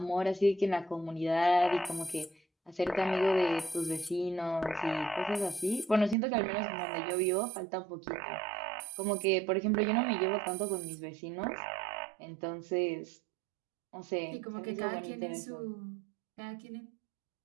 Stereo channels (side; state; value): left; drops out; at 6.2 s